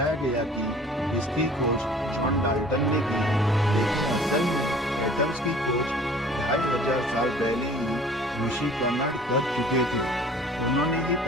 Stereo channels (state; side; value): noise; right; hum, 28 dB below the sound